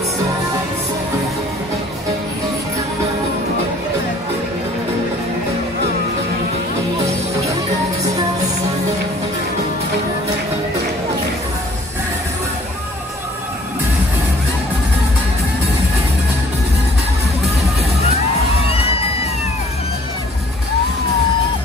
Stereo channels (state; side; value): normal; both; correlation 0.55